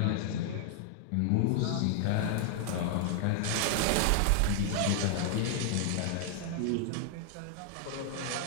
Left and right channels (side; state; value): both; different; correlation 0.00